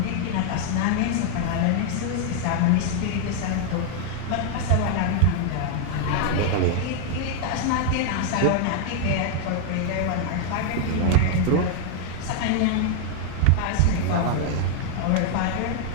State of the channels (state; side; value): different; both; correlation 0.00